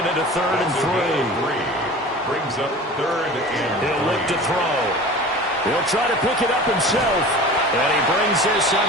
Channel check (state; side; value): normal; both; correlation 0.38